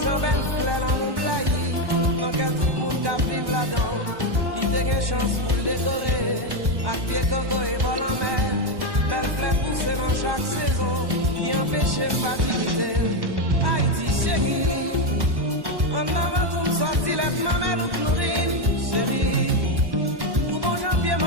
j'en belle fleur dans mon blayi. Dans quel tout le monde qui vive là-dedans. Il te gagne chance pour le décorer. À pied coco et bol en mer. Belle fleur poussée dans chaque saison. Bien empêcher facilité. Haïti chérie. En avant tout me sorti les mamelles ou chlorine. Chérie. Pour bon janvier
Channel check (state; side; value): late; left; 1.1 ms